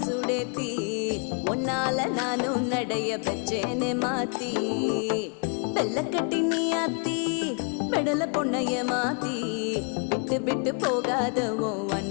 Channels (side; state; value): right; quieter; 39.5 dB